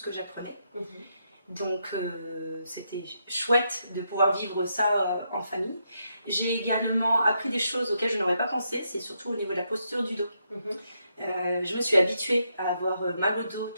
que j'apprenais. Donc c'était chouette de pouvoir vivre ça en famille. J'ai également appris des choses auxquelles je n'aurais pas pensé, c'est surtout au niveau de la posture du dos. Je me suis habituée à avoir mal au dos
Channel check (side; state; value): both; inverted; correlation -0.80